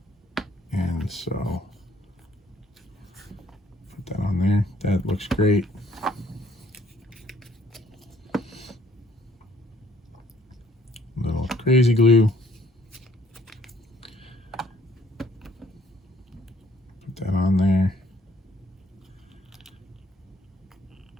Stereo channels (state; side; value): normal; both; correlation 0.63